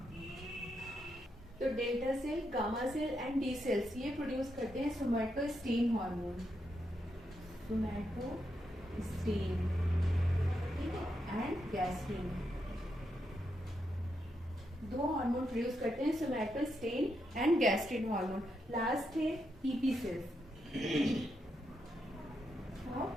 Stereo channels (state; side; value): normal; both; correlation 0.82